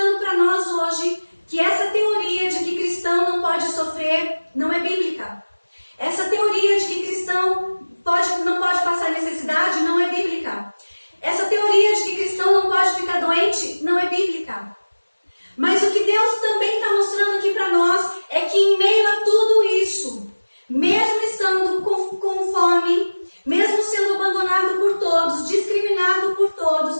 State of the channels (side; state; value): both; inverted; correlation -1.00